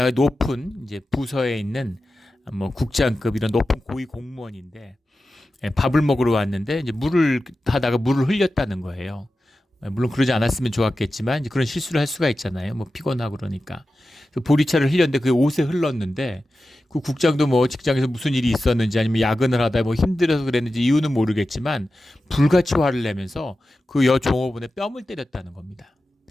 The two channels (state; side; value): normal; both; correlation 0.93